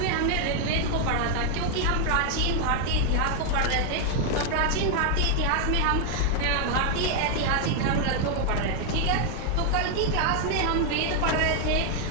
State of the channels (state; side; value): different; both; correlation 0.00